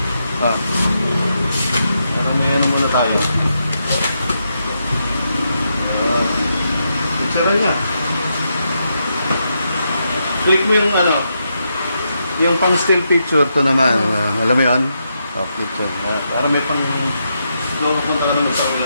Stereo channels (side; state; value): both; inverted; correlation -0.82